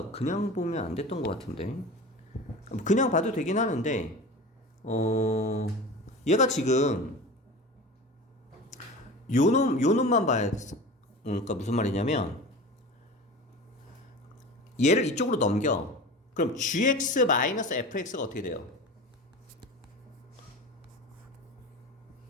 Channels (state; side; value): normal; both; correlation 0.33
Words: 그냥 보면 안 됐던 것 같은데 그냥 봐도 되긴 하는데 얘가 지금 요 놈만 봐야 돼. 그러니까 무슨 말이냐면 얘를 이쪽으로 넘겨. 그럼 gx-fx가 어떻게 돼요?